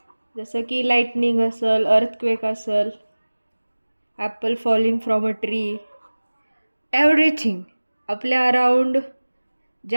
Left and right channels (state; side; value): inverted; both; correlation -1.00